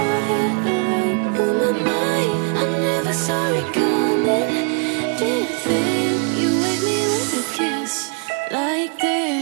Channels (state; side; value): quieter; left; 34.5 dB